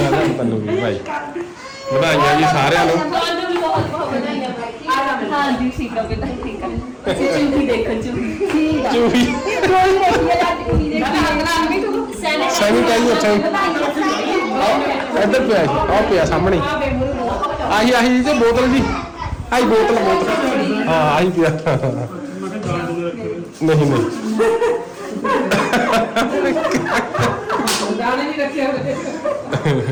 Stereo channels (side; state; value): both; identical; correlation 1.00